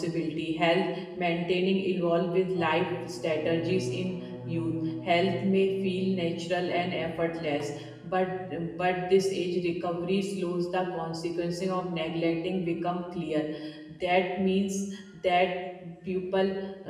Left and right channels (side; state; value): both; identical; correlation 1.00